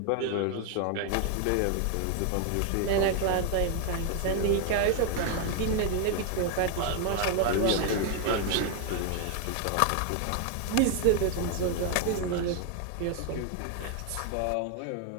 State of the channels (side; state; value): both; different; correlation 0.01